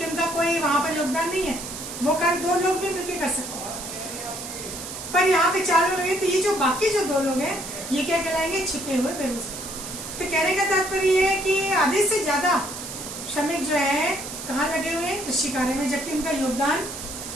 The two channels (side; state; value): right; noise; hiss, 9 dB below the sound